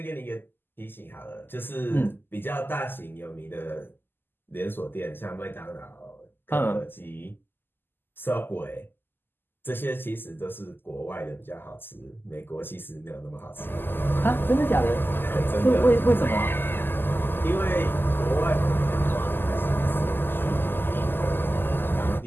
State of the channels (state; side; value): late; right; 0.096 ms